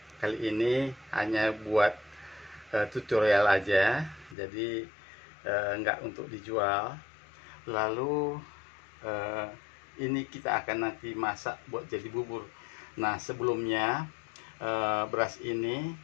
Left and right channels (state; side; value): drops out; right; at 4.4 s